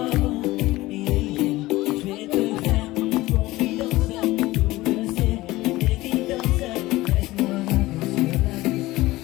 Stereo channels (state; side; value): quieter; right; 18.6 dB